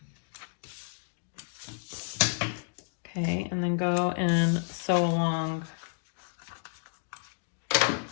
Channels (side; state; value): right; silent; digital silence